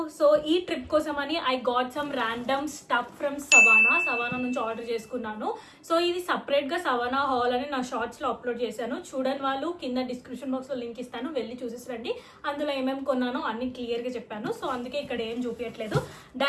so ఈ ట్రిప్ కోసం అని I got some random stuff from Savana నుంచి ఆర్డర్ చేసుకున్నాను. సో ఇది సపరేట్ గా సవానా హాల్ అని నా షార్ట్స్ లో అప్లోడ్ చేశాను. చూడని వాళ్ళు కింద డిస్క్రిప్షన్ బాక్స్ లో లింక్ ఇస్తాను, వెళ్ళి చూసేసి రండి. అందులో ఏమేమి కొన్నానో అన్ని క్లియర్ గా చెప్పాను. సో అందుకే ఇక్కడ ఏం చూపించట్లేదు,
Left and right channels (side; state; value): both; identical; correlation 1.00